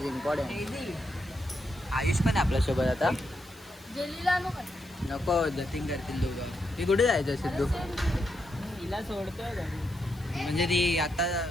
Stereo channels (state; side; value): noise; left; hiss, 25 dB below the sound